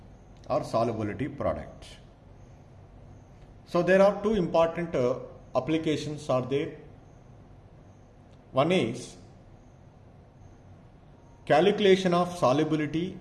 or solubility product. So there are two important applications are there. One is calculation of solubility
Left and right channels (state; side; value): identical; both; correlation 1.00